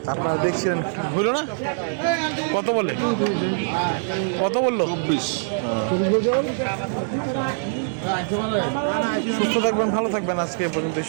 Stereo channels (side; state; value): left; silent; 58 dB below the other